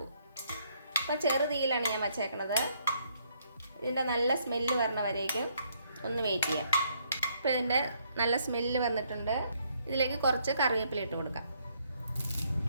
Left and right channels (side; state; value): both; inverted; correlation -0.70